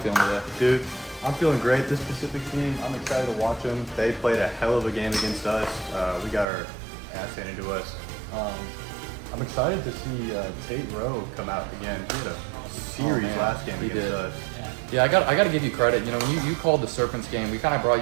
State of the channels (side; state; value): left; drops out; at 6.5 s